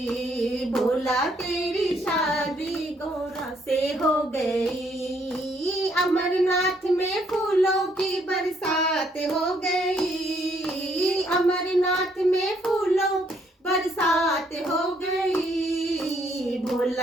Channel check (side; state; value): both; normal; correlation 0.70